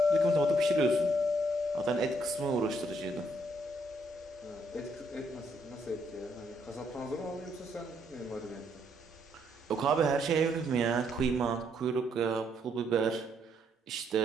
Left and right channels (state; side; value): normal; both; correlation 0.72